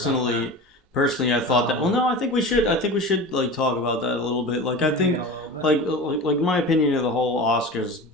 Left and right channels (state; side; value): normal; both; correlation 0.32